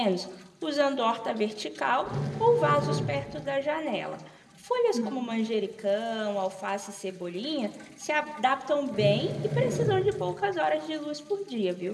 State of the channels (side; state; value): both; identical; correlation 1.00